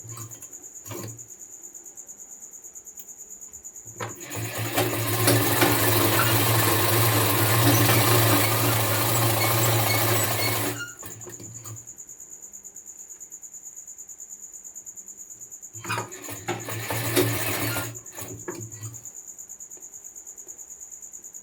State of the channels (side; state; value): both; identical; correlation 1.00